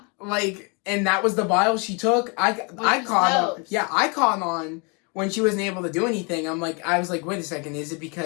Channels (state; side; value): quieter; right; 32.9 dB